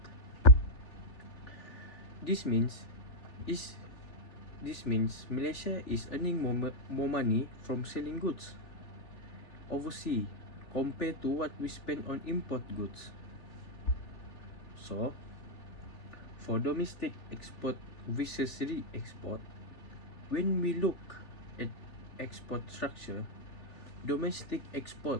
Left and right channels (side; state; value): right; late; 3.4 ms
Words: This means Malaysia is earning more money from selling goods overseas compared to what we spend on import goods. So, for domestic export versus re-export, when we look at export structure, domestic export